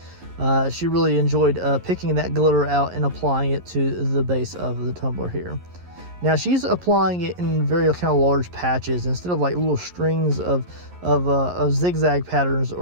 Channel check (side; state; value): left; late; 11 ms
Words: She really enjoyed picking that glitter out and applying it to the base of the tumbler here. Now she's applying it in very kind of large patches instead of like little strings of zigzag patterns